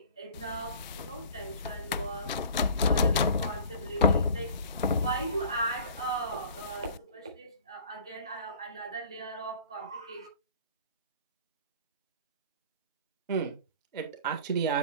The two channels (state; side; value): inverted; both; correlation -0.46